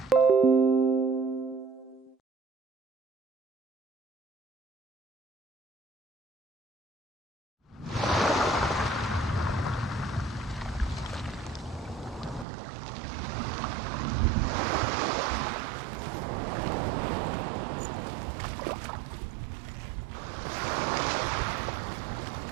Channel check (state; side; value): drops out; left; at 12.5 s